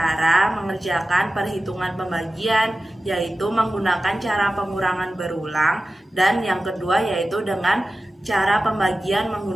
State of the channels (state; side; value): normal; both; correlation 0.95